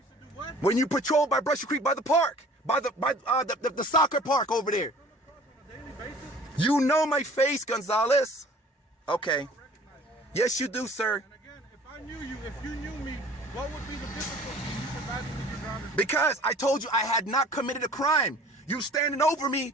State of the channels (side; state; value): both; normal; correlation 0.49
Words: When you patrolled by Brushy Creek by the park, by the soccer park over there. You know my face, Gonzalez. Okay. Yes, you do, sir. And again, if you knew me, what would be the difficulty in you providing me your driver's? Because I told you I had not committed a crime. You standing over me,